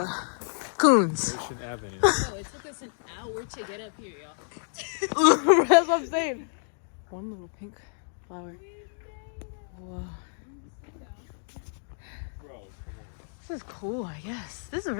Coons. Ocean Avenue. Oh, it took us an hour to get up here, y'all. That's what I'm saying. One little pink flower. Whoa. This is cool, I guess. This is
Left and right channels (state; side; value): silent; right; digital silence